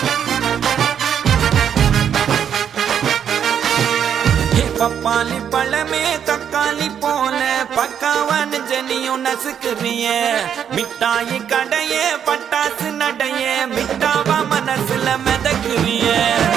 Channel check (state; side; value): quieter; left; 8.5 dB